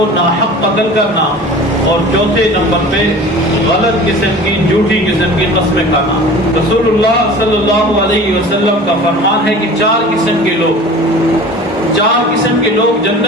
ناحق قتل کرنا، اور چوتھے نمبر پہ غلط قسم کی جھوٹی قسم کی قسمیں کھانا۔ رسول اللہ صلی اللہ علیہ وسلم کا فرمان ہے کہ 4 قسم کے لوگ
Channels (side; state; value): both; normal; correlation 0.41